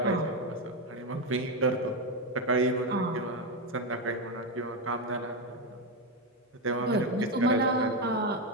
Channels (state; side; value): normal; both; correlation 0.08